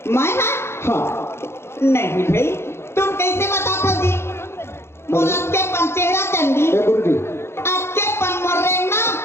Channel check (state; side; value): late; right; 0.12 ms